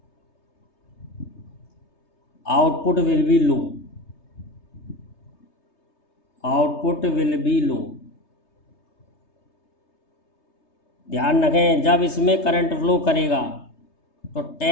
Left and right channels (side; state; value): right; late; 3.3 ms